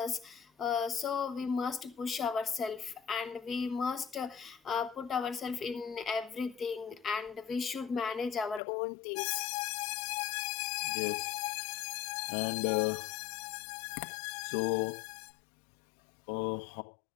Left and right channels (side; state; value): right; drops out; at 8.6 s